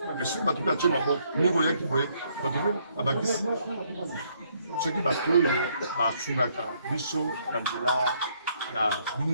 Mais si vous avez tout le vous voyez qui voyez, vous avez ceux qui battent, Sunaka, Bisso, Angela, la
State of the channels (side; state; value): both; inverted; correlation -0.70